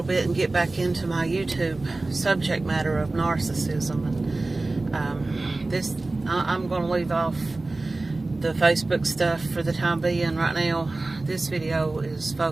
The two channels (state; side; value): quieter; left; 3.1 dB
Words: bit and get back into my YouTube subject matter of narcissism. And I'm going to leave off the Facebook stuff for the time being. Right now, this video is